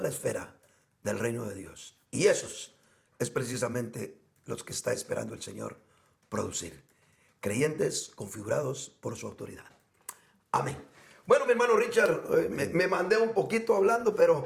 la esfera del reino de Dios. Y esos es precisamente los que está esperando el Señor producir. Creyentes configurados por su autoridad. Amén. Bueno, mi hermano Richard, me mandé un poquito hablando,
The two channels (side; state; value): both; identical; correlation 1.00